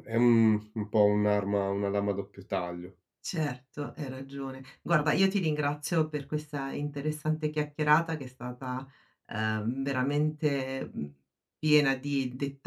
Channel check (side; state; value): both; identical; correlation 1.00